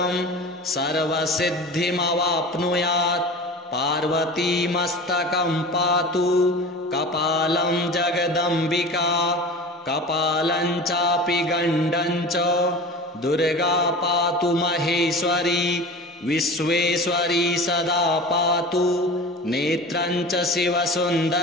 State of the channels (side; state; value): both; normal; correlation 0.35